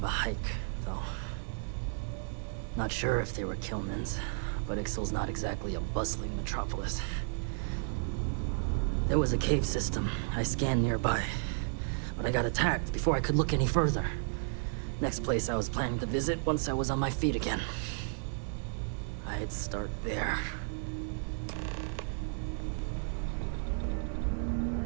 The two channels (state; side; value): silent; left; 56 dB below the other